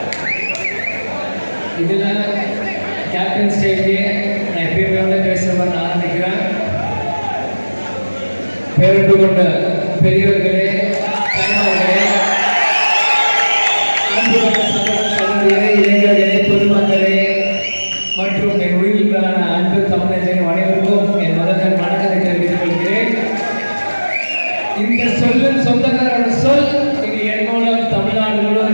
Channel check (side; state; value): both; inverted; correlation -1.00